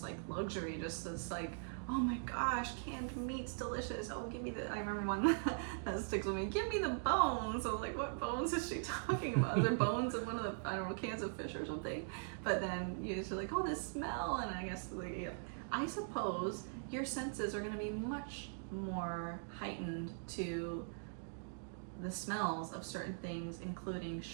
like luxury, just this like, oh my gosh, canned meat's delicious. Oh, give me I remember one that sticks with me. Give me the bones. I was like, what bones is she talking about? Is there bones in one of the, I don't know, cans of fish or something? But then you're just like, oh, this smell. And I guess, like, yeah. I suppose your senses are going to be much more heightened to the smells of certain things, including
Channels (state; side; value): silent; left; digital silence